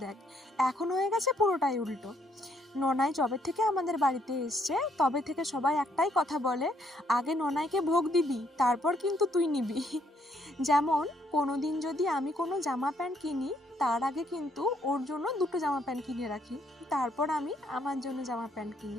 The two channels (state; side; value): normal; both; correlation 0.71